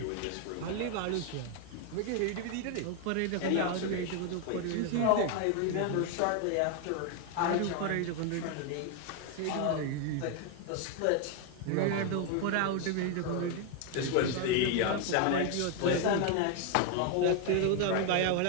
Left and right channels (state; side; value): different; both; correlation 0.01